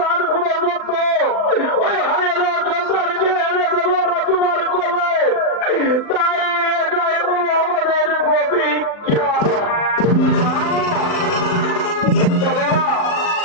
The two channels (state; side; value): late; right; 39 ms